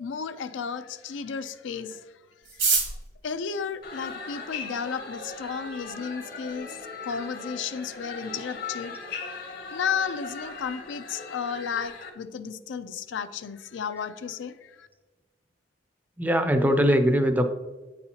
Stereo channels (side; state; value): both; normal; correlation 0.46